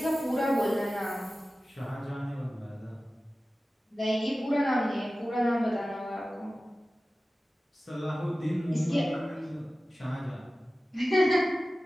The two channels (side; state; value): both; normal; correlation 0.96